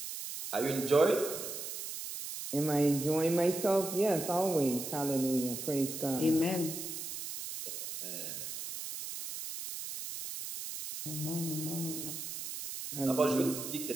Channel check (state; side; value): noise; right; hiss, 7 dB below the sound